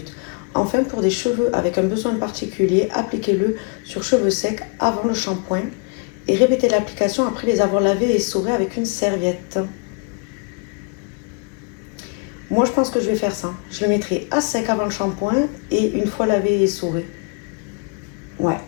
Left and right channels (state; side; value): quieter; right; 34.4 dB